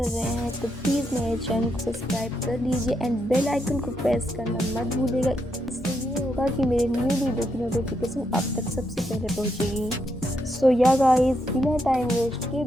रहे हैं तो प्लीज़ मेरे चैनल को सब्सक्राइब कर लीजिए एंड बेल आइकन को प्रेस करना मत भूलिएगा। इससे ये होगा कि मेरे न्यू वीडियो की नोटिफिकेशन आप तक सबसे पहले पहुंचेगी। सो या गाइस, बिना टाइम वेस्ट के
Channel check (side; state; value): both; normal; correlation 0.80